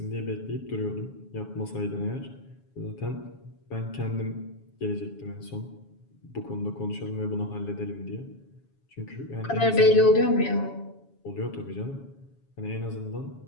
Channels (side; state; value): right; late; 7.2 ms